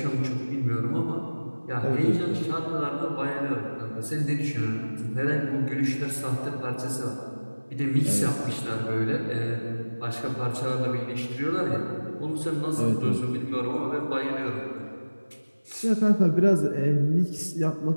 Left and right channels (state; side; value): inverted; both; correlation -1.00